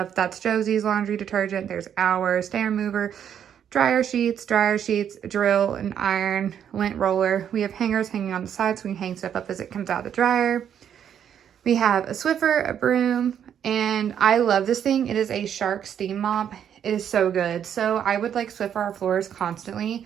That's Josie's laundry detergent. There's our stain remover, dryer sheets, drill and iron, lint roller. We have hangers hanging on the side so we can hang stuff up as it comes out of the dryer. We have a Swiffer, a broom, and I love this thing. It is a Shark steam mop. It is so good. So I would Swiffer our floors constantly,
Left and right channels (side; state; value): left; quieter; 9.0 dB